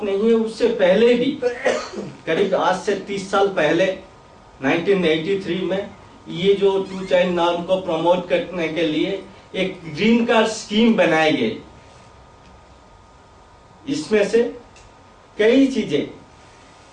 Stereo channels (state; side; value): identical; both; correlation 1.00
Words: नहीं है, उससे पहले भी करीब आज से 30 साल पहले 1983 में ये जो टू चाइल्ड नॉर्म को प्रमोट करने के लिए एक ग्रीन कार्ड स्कीम बनाई गई। इसमें से कई चीजें